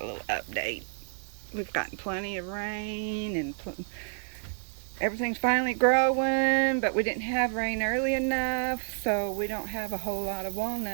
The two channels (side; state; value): left; silent; 58 dB below the other